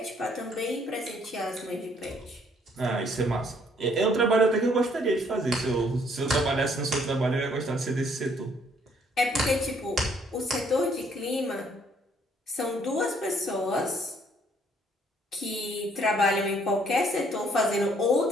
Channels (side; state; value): both; normal; correlation 0.65